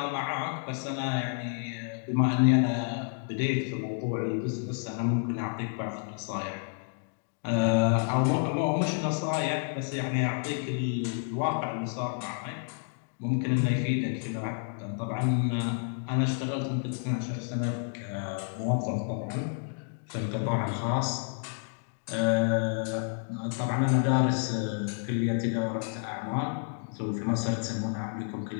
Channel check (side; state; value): right; silent; 58 dB below the other